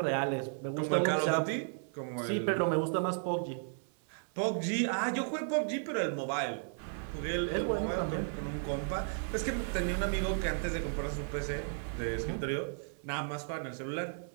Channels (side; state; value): left; silent; 55 dB below the other